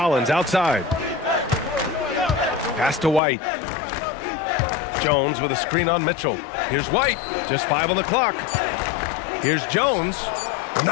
outside. Pass to White. Jones with a screen on Mitchell. Here's White. Just 5 on the clock. Here's Jones.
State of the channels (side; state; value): right; drops out; at 3.2 s